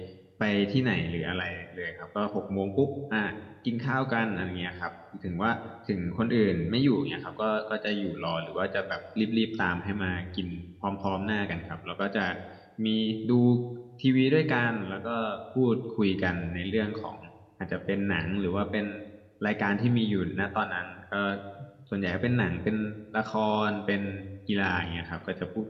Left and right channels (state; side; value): identical; both; correlation 1.00